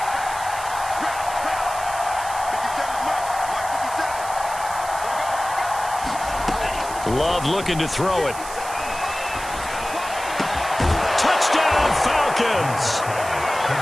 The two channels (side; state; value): right; noise; hiss, 12 dB below the sound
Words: Love looking to throw it. Touchdown Falcons!